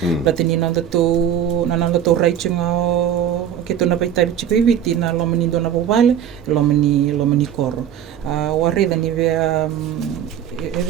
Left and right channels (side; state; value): left; quieter; 9.5 dB